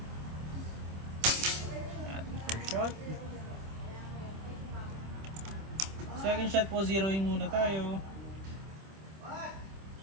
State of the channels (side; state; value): left; late; 26 ms